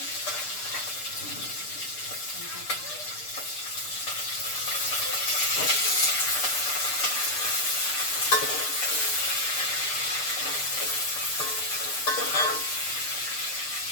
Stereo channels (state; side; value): late; right; 6.7 ms